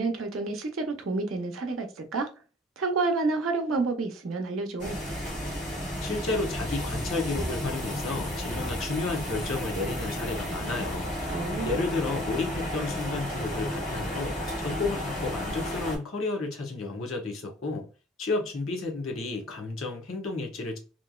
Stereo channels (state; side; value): normal; both; correlation 0.51